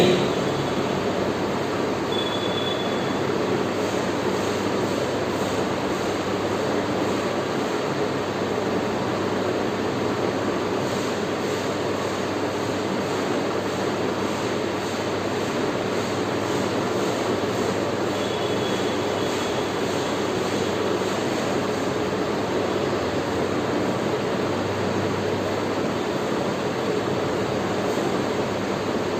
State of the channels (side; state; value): both; identical; correlation 1.00